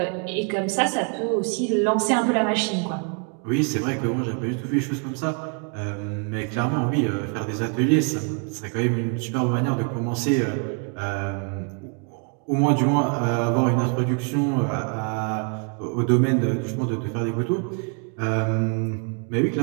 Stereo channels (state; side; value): quieter; left; 38.3 dB